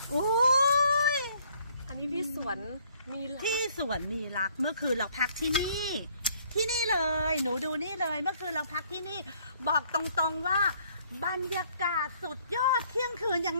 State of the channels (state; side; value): inverted; both; correlation -0.63